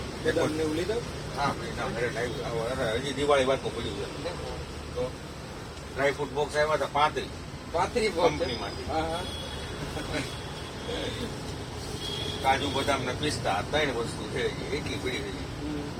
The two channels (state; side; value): identical; both; correlation 1.00